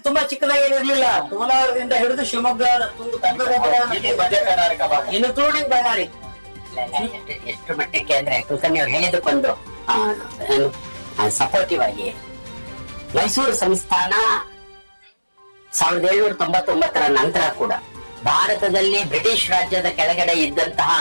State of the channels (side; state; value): both; inverted; correlation -1.00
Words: ತುಂಬಾ ಚಿಕ್ಕದಾಗಿರ್ಲಿಲ್ಲ. ಕೋಲಾರದಿಂದ ಹಿಡಿದು ಶಿವಮೊಗ್ಗ, ಮಧ್ಯ ಕರ್ನಾಟಕ ಭಾಗ, ಇನ್ಕ್ಲೂಡಿಂಗ್ ಬಳ್ಳಾರಿ. ಎಷ್ಟು ಮಟ್ಟಕ್ಕೆ ಅಂದ್ರೆ ಕುಲಕರ್ಣಿ ಅವ್ರು ಹೇಳಿದಕ್ಕೊಂದು ಸಪೋರ್ಟಿವ್ ಆಗಿ ಮೈಸೂರು ಸಂಸ್ಥಾನ 1799 ನಂತರ ಕೂಡ ಭಾರತದಲ್ಲಿ ಬ್ರಿಟಿಷ್ ರಾಜ್ಯದ ಕೆಳಗಡೆ ಇದ್ದಂತಹ